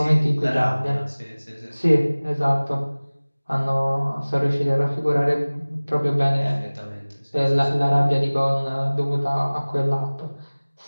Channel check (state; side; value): inverted; both; correlation -1.00